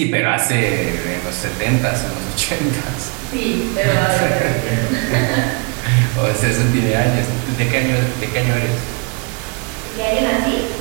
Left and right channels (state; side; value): quieter; left; 32.9 dB